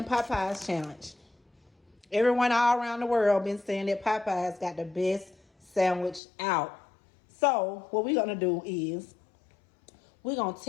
Popeyes challenge. Everyone all around the world been saying that Popeyes got the best sandwich out. So what we're going to do is we're going to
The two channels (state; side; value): drops out; right; at 6.2 s